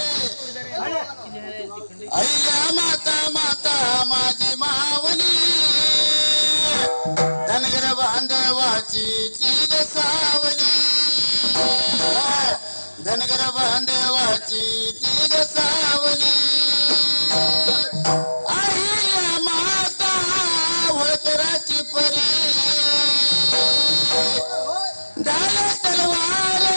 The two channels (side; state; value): both; inverted; correlation -1.00